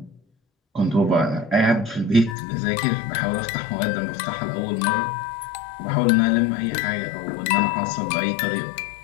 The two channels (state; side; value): drops out; right; at 2.4 s